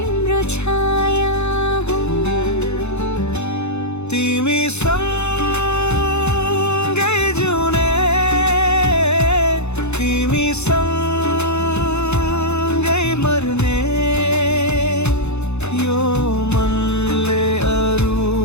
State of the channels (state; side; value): late; right; 0.81 ms